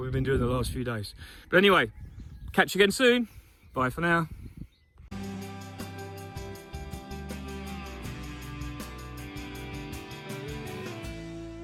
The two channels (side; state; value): both; identical; correlation 1.00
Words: been doing the last few days. But anyway, catch you again soon. Bye for now.